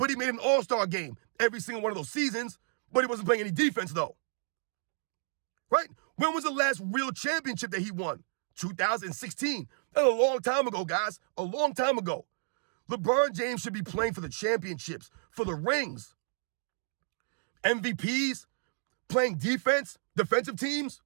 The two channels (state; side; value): silent; left; digital silence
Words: he made an All-Star game every single one of those seasons. But he wasn't playing any defense, though. Right? When was the last real championship that he won? 2016. That's a long time ago, guys. A long time ago. LeBron James should be playing for the championships, for the rings. MVPs, playing defense, defensive teams.